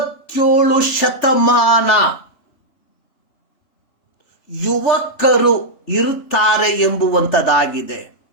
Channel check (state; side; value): late; right; 3.3 ms